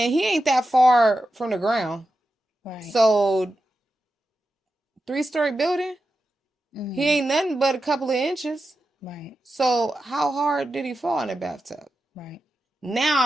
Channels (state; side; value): normal; both; correlation 0.90